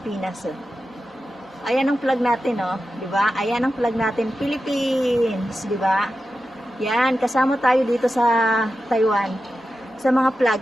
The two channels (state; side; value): normal; both; correlation 0.92